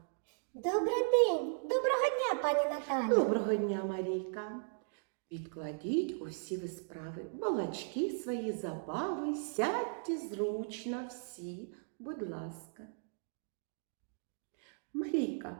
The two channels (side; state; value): left; silent; digital silence